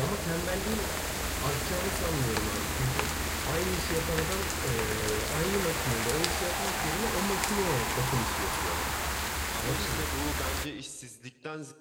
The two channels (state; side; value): identical; both; correlation 1.00